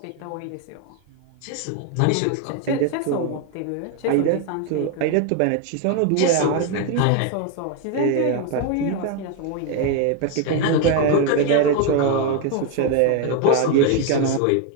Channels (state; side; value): different; both; correlation 0.01